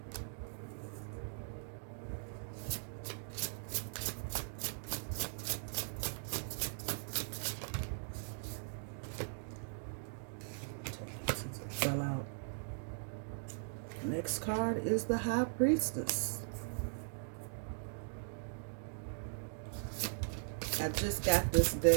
Fell out. Next card is the High Priestess. I just got this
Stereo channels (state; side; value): silent; left; digital silence